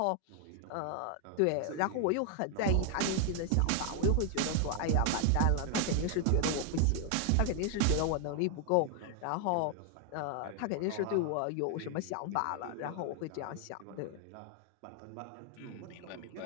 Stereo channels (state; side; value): different; both; correlation 0.00